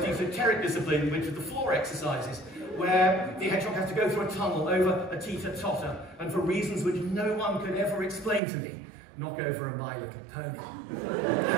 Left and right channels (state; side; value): drops out; left; at 8.4 s